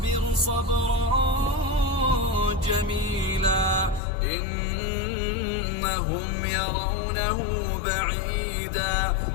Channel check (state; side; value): drops out; right; at 4.0 s